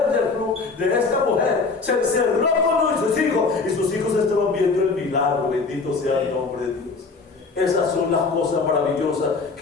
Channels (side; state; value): right; quieter; 4.3 dB